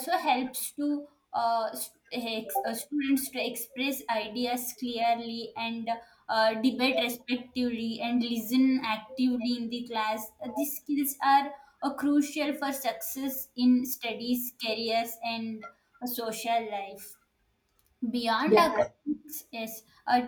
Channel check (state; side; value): identical; both; correlation 1.00